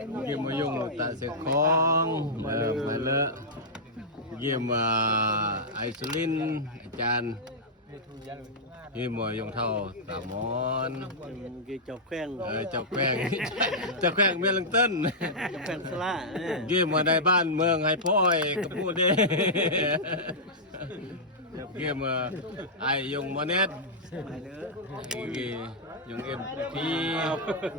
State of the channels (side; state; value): both; normal; correlation -0.09